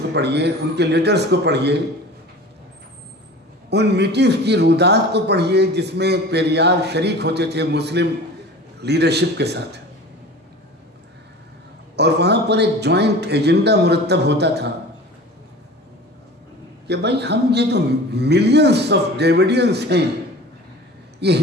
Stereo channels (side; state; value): both; normal; correlation 0.39